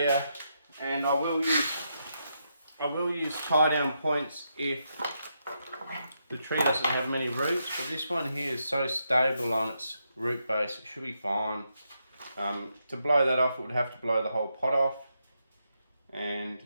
and I will use tie down points if the tree doesn't have many roots, but this one here is so stable on its root base, it should be fine. To blow that off, it would have to blow the whole pot off. And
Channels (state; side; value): inverted; both; correlation -0.82